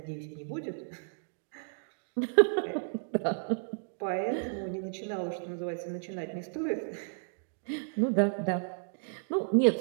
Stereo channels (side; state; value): left; silent; digital silence